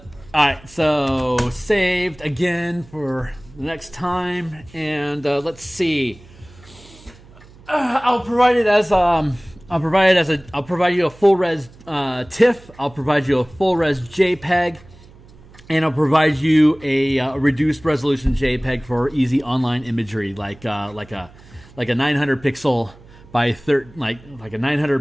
so saved again for the next time. And let's see. I'll provide you a full res TIFF. I'll provide you a full res JPEG. And I'll provide you a reduced resolution JPEG for easy online imagery, like a 900 pixel by like a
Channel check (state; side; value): noise; right; hum, 23 dB below the sound